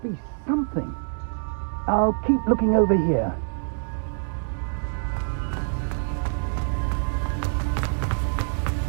be something. I'll keep looking over here.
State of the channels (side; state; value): left; silent; digital silence